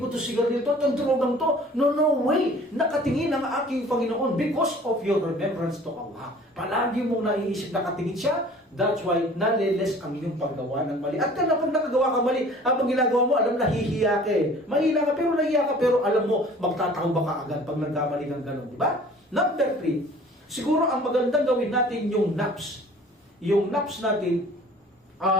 ko to sigarilyo to, itong drogang to. No way. Nakatingin ang aking Panginoon because of your remembrance to Allah. Palagi mong naiisip, nakatingin siya. That's why naliles ang iyong paggawa ng mali. At kaya pag nakagawa ka mali, habang ginagawa mo, alam, nahihiya ka eh. Mahina ka, pero nahihiya ka, pero alam mo, magtatakaw ka agad pag nagkamali ng gano'n. Diba? Number 3, siguro ang magandang gawin natin yung naps. Yung naps natin,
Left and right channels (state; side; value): normal; both; correlation 0.48